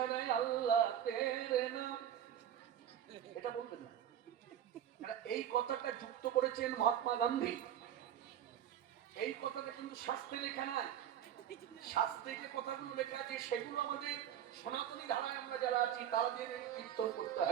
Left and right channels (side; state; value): left; quieter; 10.1 dB